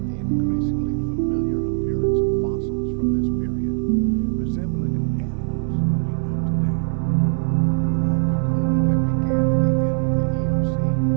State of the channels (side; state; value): left; silent; 63 dB below the other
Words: the increasingly familiar appearance of fossils from this period, resembling animals we know today. The cooling that began at the end of the Eocene